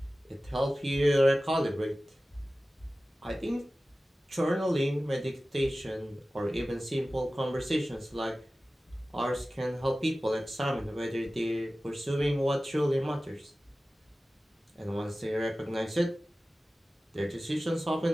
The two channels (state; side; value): normal; both; correlation 0.96